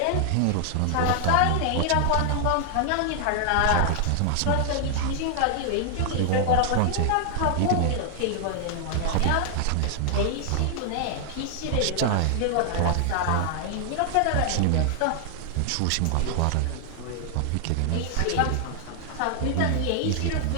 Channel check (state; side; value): different; both; correlation 0.00